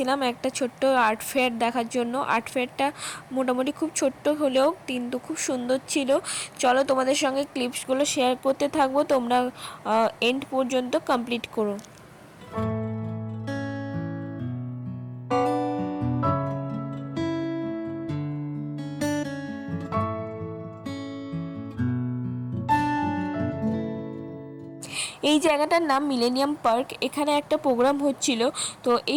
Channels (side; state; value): both; identical; correlation 1.00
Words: একটা ছোট্ট আর্ট ফেয়ার দেখার জন্য। আর্ট ফেয়ারটা মোটামুটি খুব ছোট্ট হলেও কিন্তু খুব সুন্দর ছিল। চলো তোমাদের সঙ্গে ক্লিপসগুলো শেয়ার করতে থাকবো, তোমরা এন্ড পর্যন্ত কমপ্লিট করো। এই জায়গাটার নাম মিলেনিয়াম পার্ক। এখানে একটা প্রোগ্রাম হচ্ছিল। তো